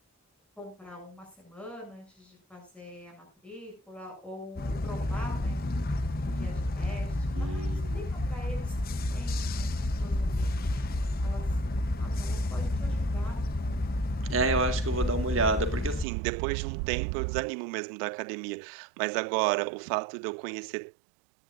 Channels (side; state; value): left; drops out; at 16.1 s